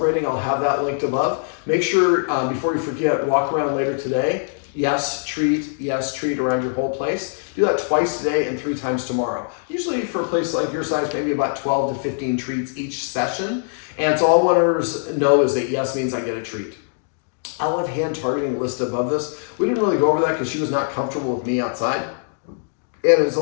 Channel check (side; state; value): right; silent; digital silence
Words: I'll have that linked above. Make sure, before you forget, walk around later today. Yes, treat around your whole place. Do that twice today and 3 times tomorrow. Usually for a place like your size, maybe about 12 to 15 treats each session. And so all I want to know is that yes means I get a treat. I'll have hand targeting list above this. We didn't really go over that because she was not comfortable with me outside. And it's a